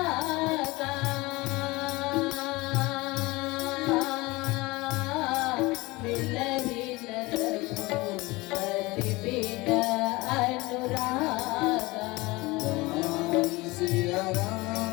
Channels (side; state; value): right; quieter; 22.2 dB